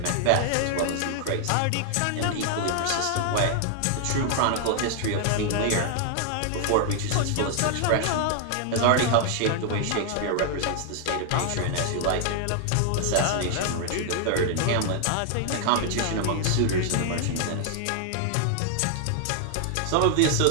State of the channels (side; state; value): both; different; correlation 0.00